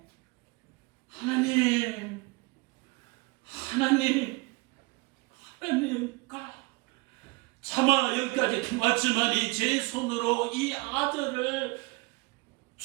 하나님가 차마 여기까지 왔지만 제 손으로 이 아들을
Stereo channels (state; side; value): quieter; left; 26.1 dB